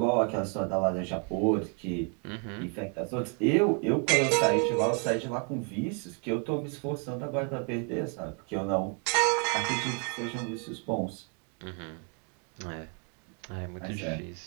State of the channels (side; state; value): left; quieter; 38.7 dB